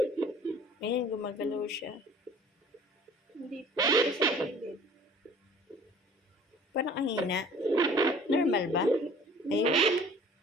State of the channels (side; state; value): both; normal; correlation 0.49